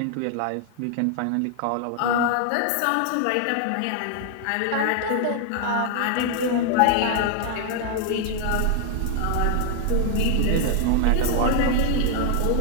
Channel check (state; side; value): different; both; correlation 0.00